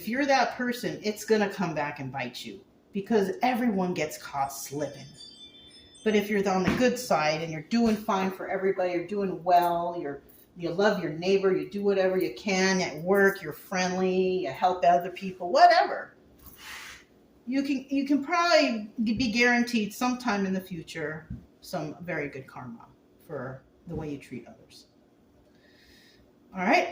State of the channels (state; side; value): identical; both; correlation 1.00